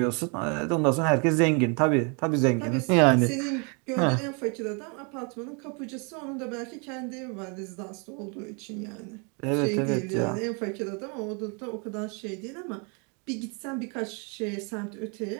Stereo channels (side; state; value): left; quieter; 35.1 dB